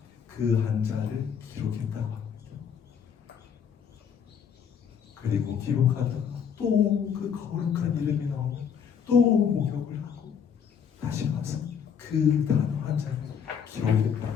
그 한자를 기록했다고 합니다. 그리고 기록하다가 또 그 거룩한 이름이 나오면 또 목욕을 하고 다시 와서 그 단어 한자를 기록했다고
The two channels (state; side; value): quieter; right; 7.4 dB